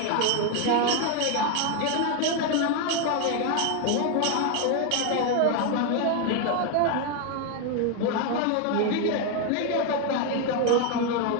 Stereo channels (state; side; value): different; both; correlation 0.01